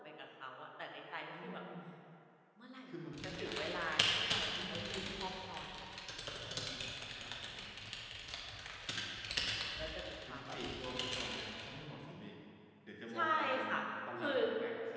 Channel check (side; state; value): both; identical; correlation 1.00